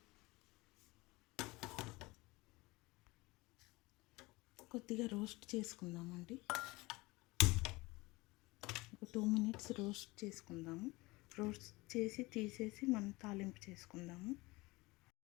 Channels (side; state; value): right; quieter; 22.4 dB